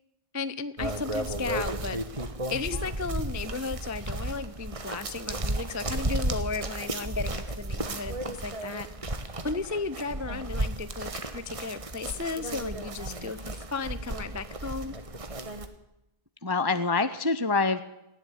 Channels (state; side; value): late; left; 1.6 ms